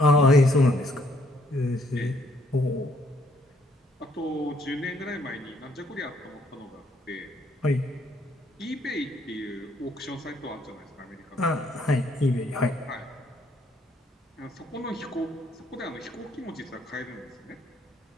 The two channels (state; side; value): normal; both; correlation 0.68